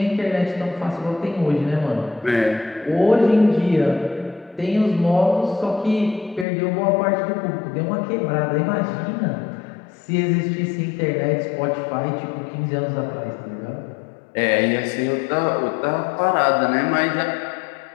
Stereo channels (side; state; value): right; drops out; at 6.5 s